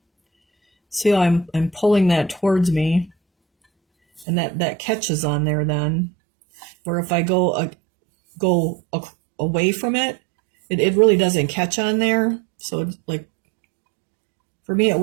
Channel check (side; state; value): left; drops out; at 4.2 s